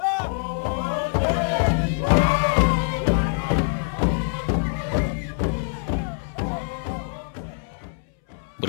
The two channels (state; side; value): silent; right; 63 dB below the other